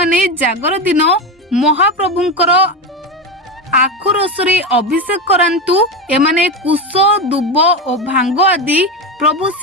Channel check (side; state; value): both; normal; correlation 0.18